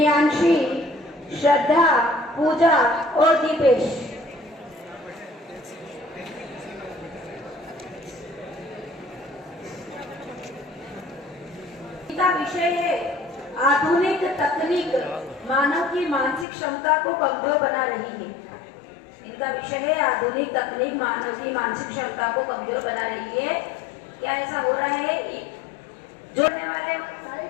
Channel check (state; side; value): drops out; right; at 16.4 s